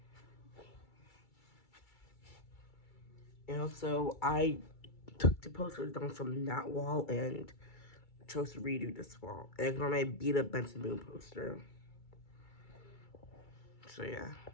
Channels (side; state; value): right; late; 2.3 ms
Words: And also, I took the posters down from that wall and chose to redo this wall. And ignore my beat up Benson Boone poster. So yeah.